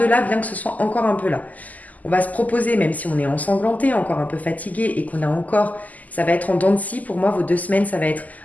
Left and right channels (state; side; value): late; right; 0.078 ms